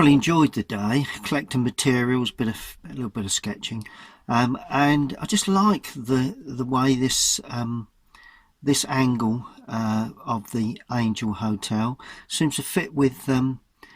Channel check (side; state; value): both; identical; correlation 1.00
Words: enjoyed the day, collecting materials, a little bit of sketching, and I just like the way this angle of the Angel Hotel seems to fit with the